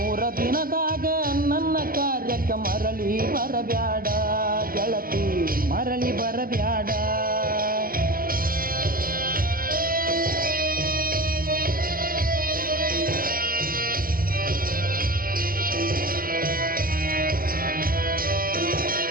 ದಿನದಾಗ ನನ್ನ ಕಾರ್ಯಕ್ಕ ಮರಳಿ ಬರಬ್ಯಾಡ ಗೆಳತಿ, ಮರಳಿ ಬರಬ್ಯಾಡ.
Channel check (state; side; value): late; left; 0.42 ms